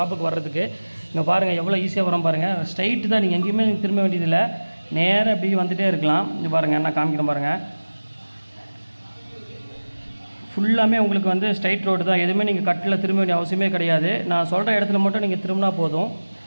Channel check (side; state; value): both; inverted; correlation -1.00